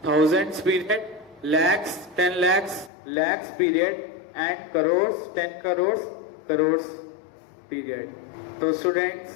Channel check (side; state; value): right; drops out; at 2.9 s